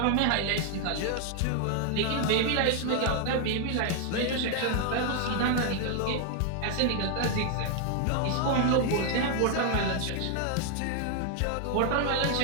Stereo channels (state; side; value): different; both; correlation 0.00